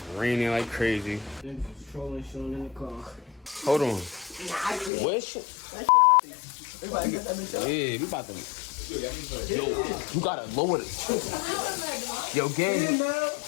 raining like crazy. Niggas trolling Sean in the car. Hold on. What shit? Yeah, we about to. Yo, you gotta lower it. Yo, gang.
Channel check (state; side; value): drops out; right; at 4.9 s